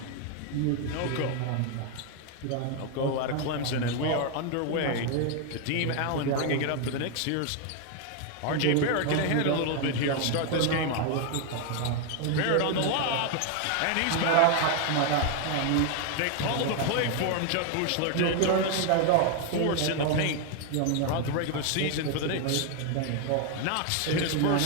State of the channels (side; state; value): both; different; correlation 0.01